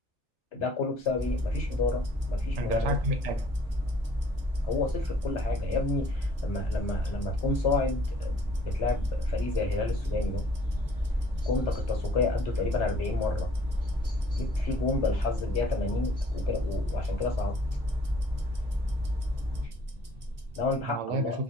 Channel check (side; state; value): both; normal; correlation 0.57